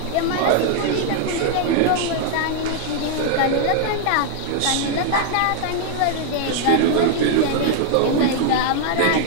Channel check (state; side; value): different; both; correlation 0.00